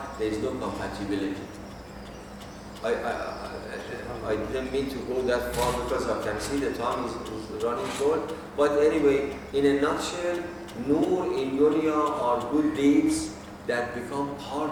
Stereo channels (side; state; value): both; identical; correlation 1.00